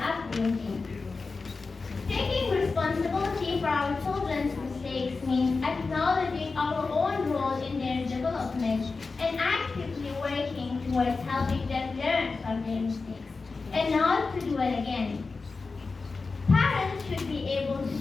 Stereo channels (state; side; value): quieter; right; 4.1 dB